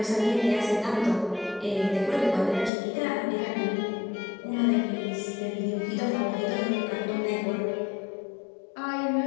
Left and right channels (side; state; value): right; drops out; at 2.7 s